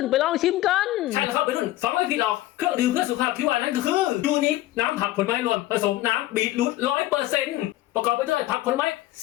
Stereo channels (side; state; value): right; quieter; 16.0 dB